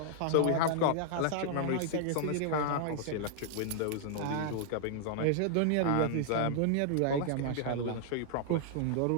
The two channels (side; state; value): both; different; correlation -0.01